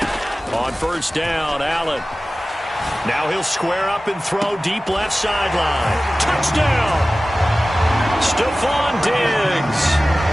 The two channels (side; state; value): both; normal; correlation 0.97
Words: On first down, Allen. Now he'll square up and throw deep left sideline. Touchdown! Stephon